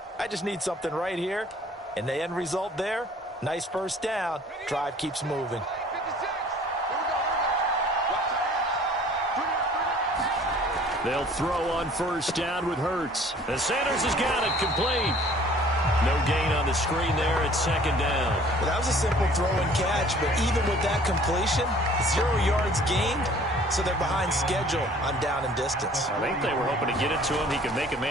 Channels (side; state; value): both; normal; correlation 0.53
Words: I just need something right here. And the end result there, nice 1st down. Drive keeps moving. They'll throw on 1st down with Hurts. And Sanders has got it complete. No gain on the screen there at 2nd down. Well, that was a simple throw and catch, but even with that completion, 0 yards gained, so they're behind schedule on down and distance. I think they were hoping to get it to him. He could make a